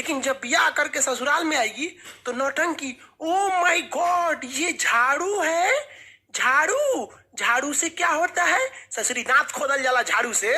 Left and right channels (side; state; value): both; identical; correlation 1.00